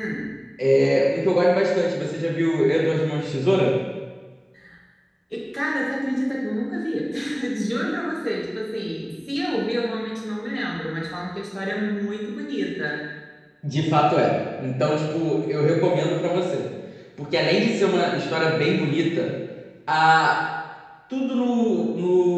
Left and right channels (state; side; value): identical; both; correlation 1.00